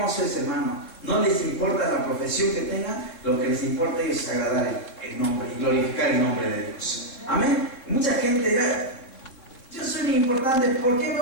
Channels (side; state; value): right; late; 3.7 ms